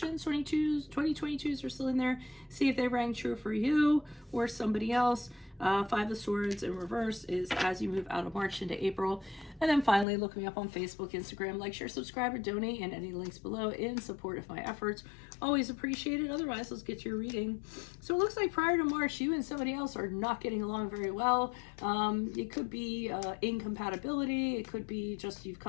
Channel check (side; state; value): right; drops out; at 10.1 s